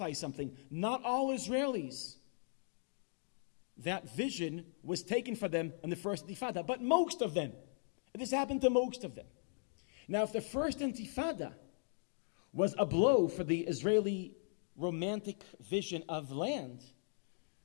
something, not all Israelis, that vision was taken for them in the first Intifada, but most of them. This happened to most of them. Now, if the first Intifada was a blow for the Israeli romantic vision of land,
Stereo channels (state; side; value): silent; right; digital silence